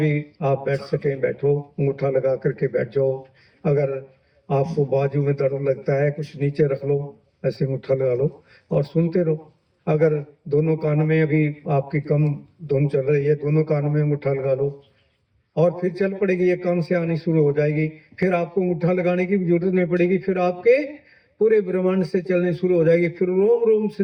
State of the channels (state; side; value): identical; both; correlation 1.00